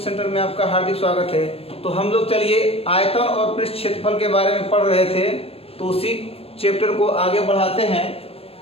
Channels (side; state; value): right; late; 0.28 ms